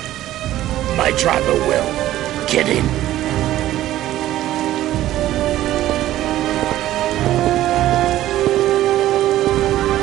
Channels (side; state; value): left; quieter; 14.0 dB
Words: My driver will. Get in.